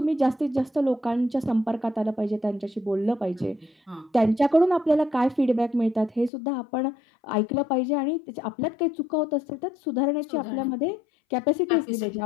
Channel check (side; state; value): right; drops out; at 6.3 s